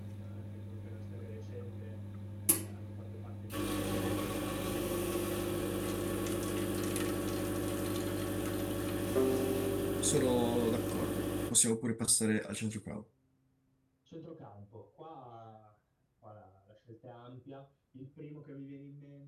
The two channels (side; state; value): both; identical; correlation 1.00